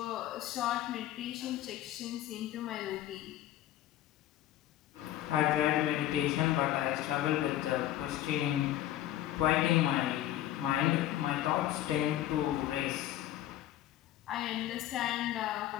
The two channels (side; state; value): right; quieter; 13.4 dB